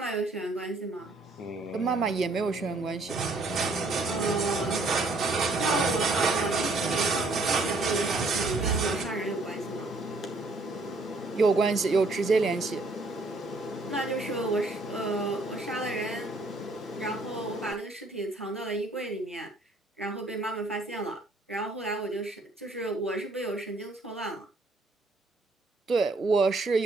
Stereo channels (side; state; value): left; quieter; 3.0 dB